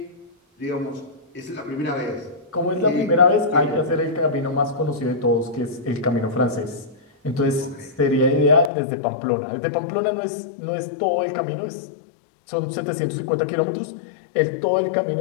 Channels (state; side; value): drops out; right; at 8.7 s